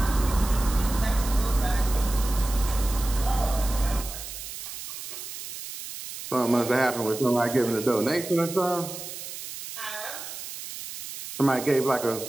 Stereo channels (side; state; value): right; noise; hiss, 10 dB below the sound